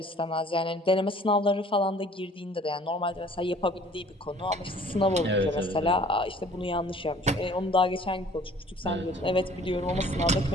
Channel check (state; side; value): normal; both; correlation 0.53